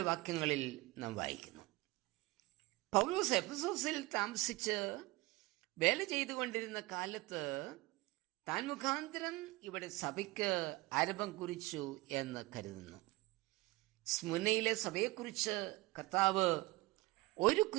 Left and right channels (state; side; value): quieter; left; 20.6 dB